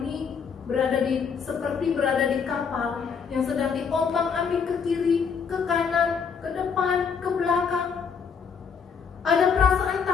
seperti berada di kapal yang sedang diombang-ambing ke kiri, ke kanan, ke depan, ke belakang. Ada perasaan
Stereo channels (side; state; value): right; quieter; 6.3 dB